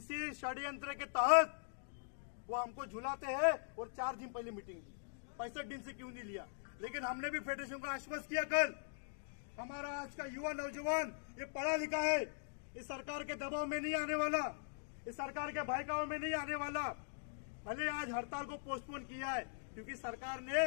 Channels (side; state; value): right; silent; digital silence